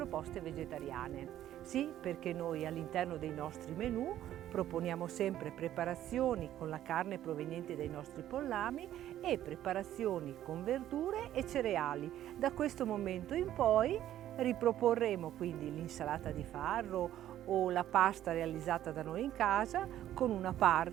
vegetariane. Sì, perché noi all'interno dei nostri menù proponiamo sempre preparazioni con la carne proveniente dai nostri pollami e preparazioni con verdure e cereali. Da questo momento in poi riproporremo quindi l'insalata di farro o la pasta realizzata da noi in casa con una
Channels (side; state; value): left; quieter; 12.2 dB